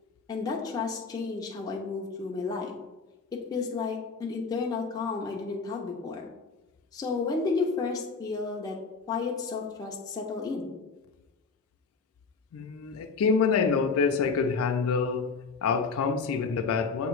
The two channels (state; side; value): quieter; right; 4.7 dB